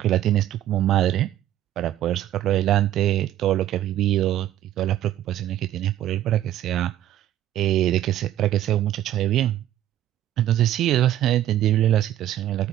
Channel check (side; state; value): left; quieter; 12.5 dB